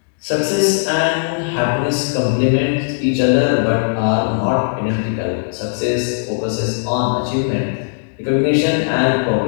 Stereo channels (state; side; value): silent; right; digital silence